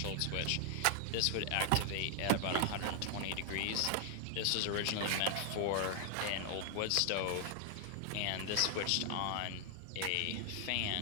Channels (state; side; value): different; both; correlation 0.00